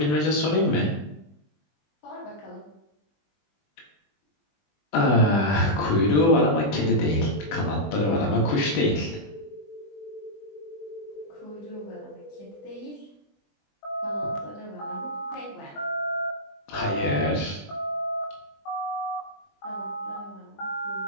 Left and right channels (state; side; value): late; right; 20 ms